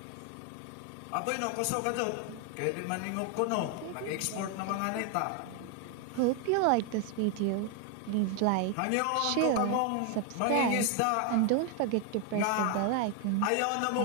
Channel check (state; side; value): different; both; correlation 0.01